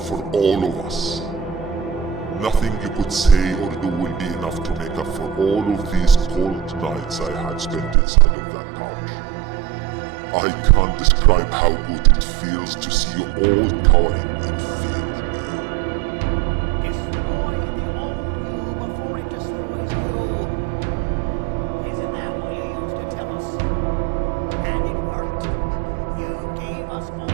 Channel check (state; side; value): drops out; left; at 8.0 s